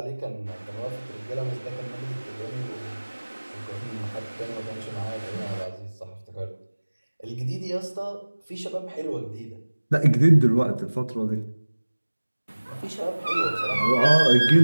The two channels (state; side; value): inverted; both; correlation -1.00